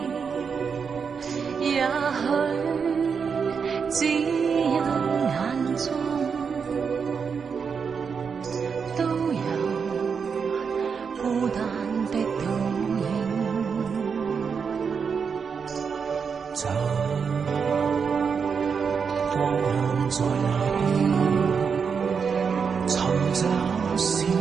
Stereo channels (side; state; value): left; quieter; 6.1 dB